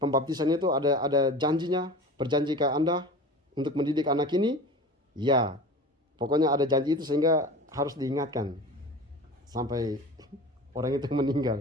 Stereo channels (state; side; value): normal; both; correlation 0.35